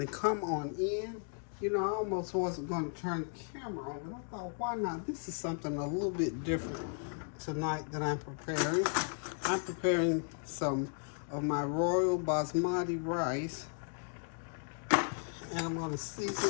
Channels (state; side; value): silent; right; 54 dB below the other